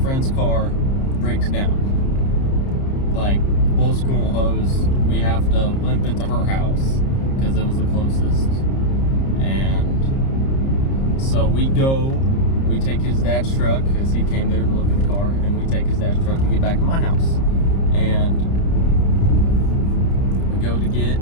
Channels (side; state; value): right; late; 30 ms